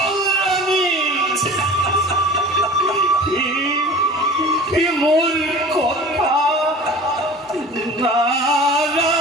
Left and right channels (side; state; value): both; normal; correlation 0.40